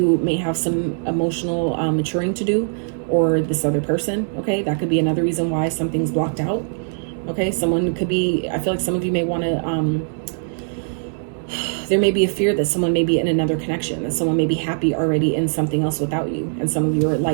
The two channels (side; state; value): left; silent; 62 dB below the other